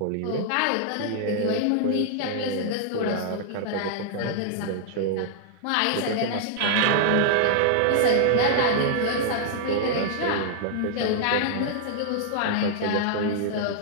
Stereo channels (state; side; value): different; both; correlation -0.01